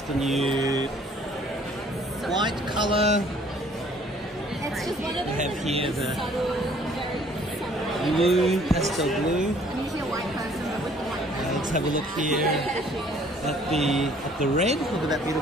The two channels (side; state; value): both; normal; correlation 0.58